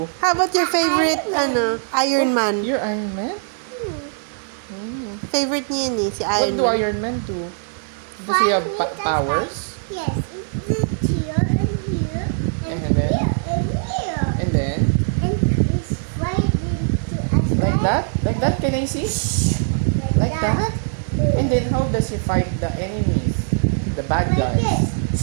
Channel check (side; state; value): left; silent; digital silence